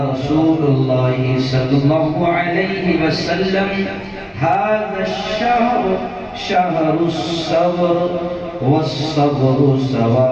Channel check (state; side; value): identical; both; correlation 1.00